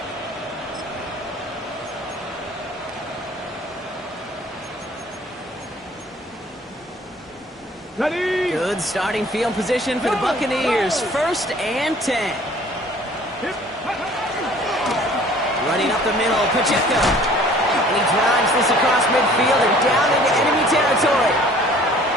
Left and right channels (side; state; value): both; normal; correlation 0.52